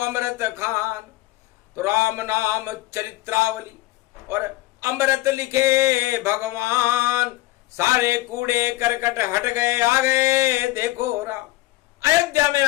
खान। तो राम नाम चरित्रावली और अमृत लिखे भगवान। सारे कूड़े करकट हट गए, आ गए देखो राम। अयोध्या में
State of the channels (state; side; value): quieter; right; 18.3 dB